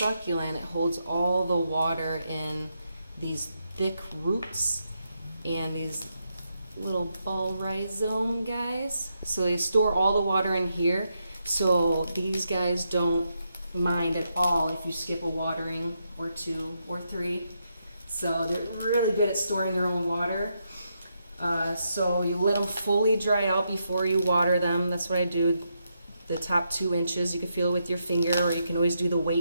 It holds all the water in these thick roots and these little ball rhizome guys. So they store all the water in here. So these guys don't mind at all if you skip a watering or two or three. So they're really good at storing their own water. So you let them fully dry out before you water them. That's what I do. The top 2 inches, you can feel it with your finger, or you can always do the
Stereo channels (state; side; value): inverted; both; correlation -0.82